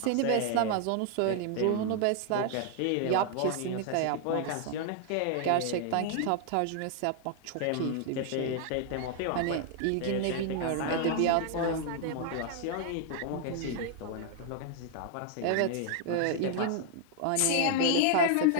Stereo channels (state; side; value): different; both; correlation 0.00